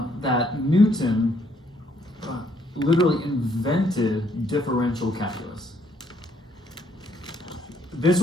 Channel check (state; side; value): normal; both; correlation 0.68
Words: Newton literally invented differential calculus. This